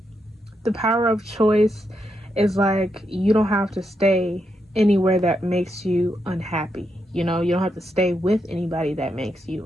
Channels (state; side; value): normal; both; correlation 0.82